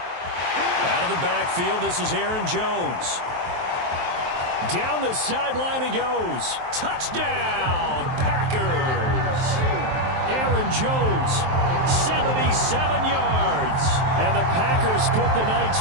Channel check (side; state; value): left; late; 23 ms